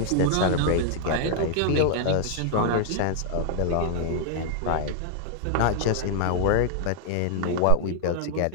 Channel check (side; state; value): both; different; correlation 0.00